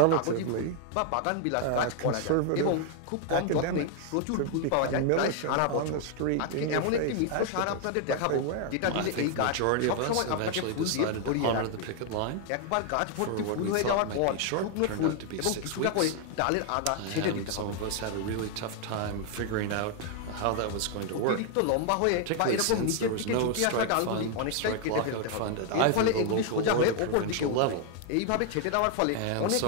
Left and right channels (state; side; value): different; both; correlation 0.00